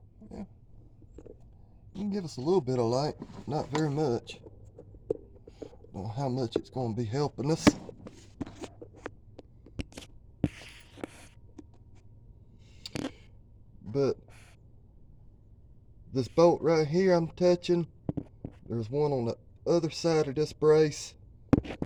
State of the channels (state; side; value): identical; both; correlation 1.00